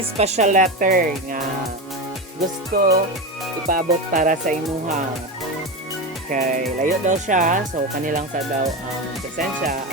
yung special letter nga gusto ipaabot para sa imuha. Okay, layo daw siya, so kanilang sa daw presensya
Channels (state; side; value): normal; both; correlation 0.19